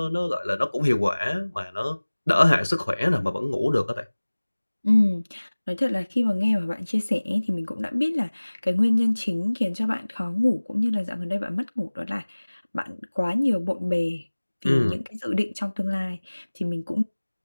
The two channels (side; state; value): both; inverted; correlation -1.00